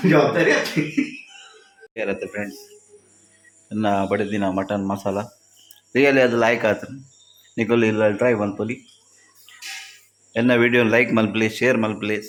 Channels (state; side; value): identical; both; correlation 1.00